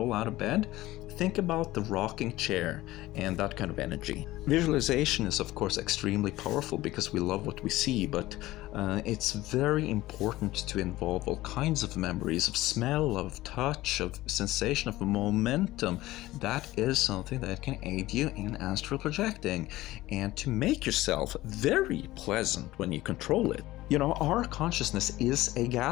out of bed. Think about the rocking chair and that kind of energy. Visualization is, of course, extremely powerful because we love what we see, but it's very important to involve all kinds of memories of smell, of touch, of sensation, of momentum. That is something that can aid you in astral projecting and to make yourself very pleasant when you control it. Our consciousness is a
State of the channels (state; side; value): quieter; right; 17.2 dB